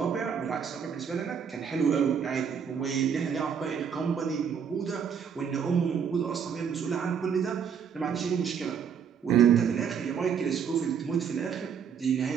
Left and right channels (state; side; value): quieter; left; 7.3 dB